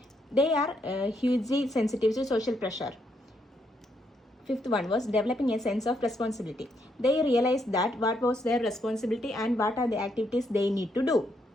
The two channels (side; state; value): both; normal; correlation 0.76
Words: They are hugely sensitive to social pressure. Fifth one was developing a sense of responsibility. They realized that what was their responsibility and what are the activities they need to do.